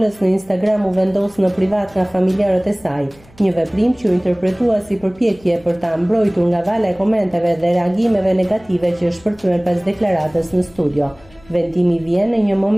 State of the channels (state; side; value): noise; left; hum, 27 dB below the sound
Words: në Instagram u vendos në privat nga familjarët e saj, një veprim që u interpretua si përpjekje për ta mbrojtur nga vala e komenteve dhe reagimeve negative që shpërthyen pas deklaratës në studio. Vendimi vjen në një